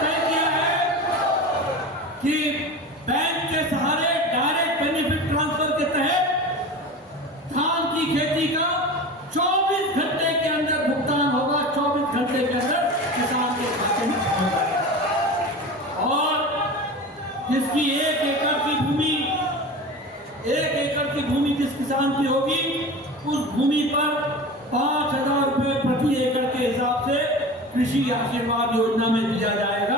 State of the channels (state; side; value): normal; both; correlation 0.32